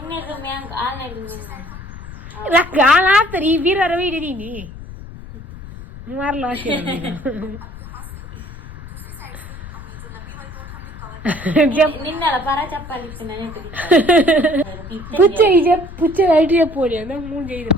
ಹಾಕ್ತಾರೆ ಈ ಬೀರರ ಹಿಡಿದೀನಿ ಮಾರ್ಲ నిన్నల పరా చెప్పాలి పుచ్చ ఇది పుచ్చ ఐటీ చెప్పోడి అన్న 3 చేయదు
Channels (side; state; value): left; noise; rumble, 13 dB below the sound